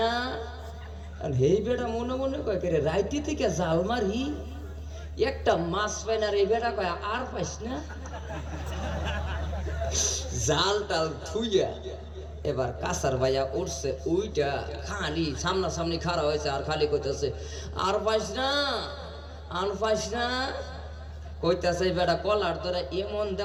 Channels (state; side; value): identical; both; correlation 1.00